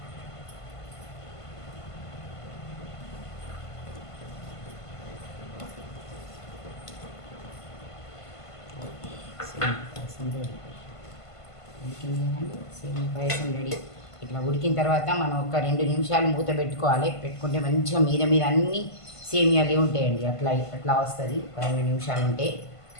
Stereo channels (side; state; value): right; late; 1.5 ms